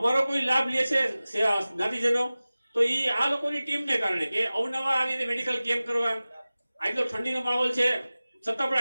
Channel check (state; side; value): inverted; both; correlation -0.97